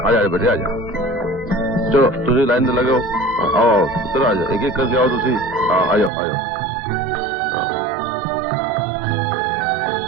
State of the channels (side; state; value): left; drops out; at 6.1 s